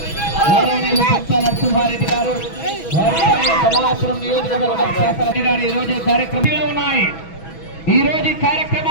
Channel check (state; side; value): late; right; 6.1 ms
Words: గౌరవనీయులు సత్య నరసింహారెడ్డి గారు, కమలాపురం నియోజకవర్గం శాసనసభ్యులు గారు ఈరోజు కార్యక్రమంలో ఉన్నాయి. ఈరోజు